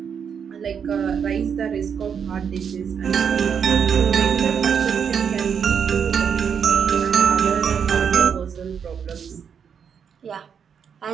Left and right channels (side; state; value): left; quieter; 7.2 dB